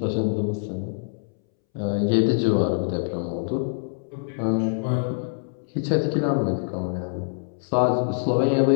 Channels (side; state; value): right; silent; 62 dB below the other